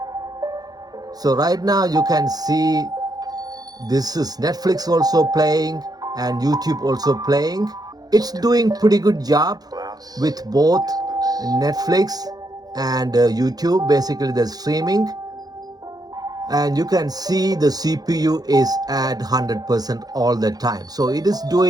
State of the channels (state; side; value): late; left; 0.19 ms